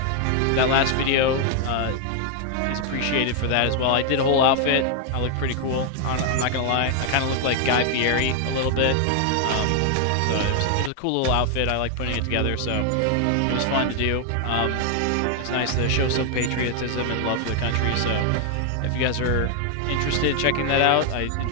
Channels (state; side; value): different; both; correlation 0.00